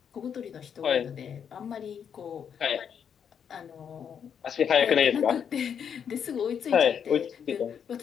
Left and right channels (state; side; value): quieter; right; 7.8 dB